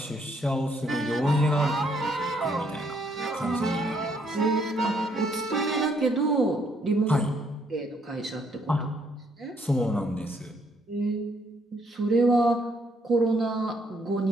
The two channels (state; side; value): normal; both; correlation 0.70